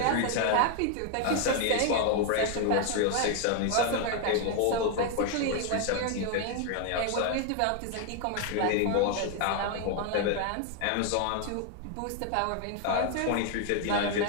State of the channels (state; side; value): different; both; correlation 0.00